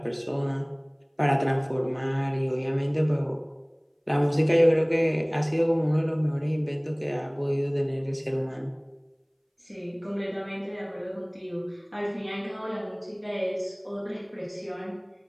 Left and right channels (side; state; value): both; identical; correlation 1.00